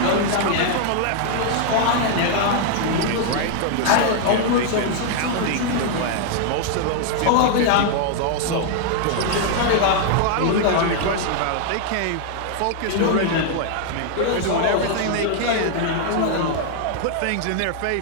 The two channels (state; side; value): different; both; correlation 0.00